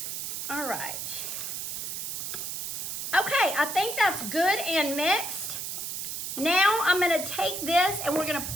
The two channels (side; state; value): right; noise; hiss, 4 dB below the sound